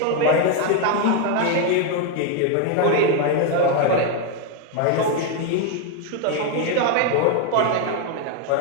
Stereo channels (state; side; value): different; both; correlation 0.01